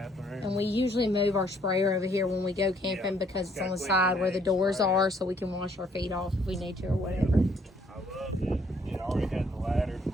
And we usually move our sprayer over here when we go camping Yeah. because it's Got on the quick side where the connect doors sprayer. are, so we can wash our feet off if we need to or whatever. I love it.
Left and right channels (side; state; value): both; normal; correlation 0.65